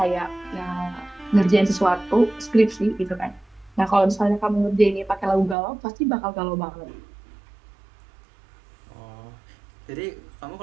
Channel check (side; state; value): left; drops out; at 5.6 s